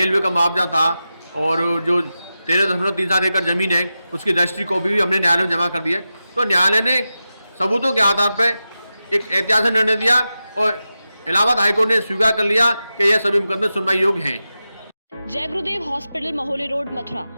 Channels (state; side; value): inverted; both; correlation -0.92